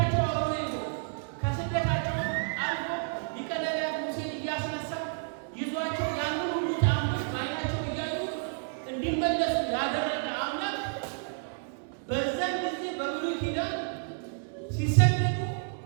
አብሮ ይዞ ከስደታቸው አልፎ ሊቀ ነቢያት ሙሴን እያስነሳ ይዟቸው ያንን ሁሉ ተአምር በዓይናቸው እያዩ እንዲመለሱ ያደረገ አምላክ በዛን ጊዜ በብሉይ ኪዳን ሲሰደዱ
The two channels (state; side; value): silent; left; digital silence